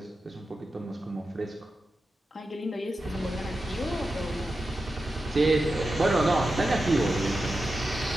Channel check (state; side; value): normal; both; correlation 0.91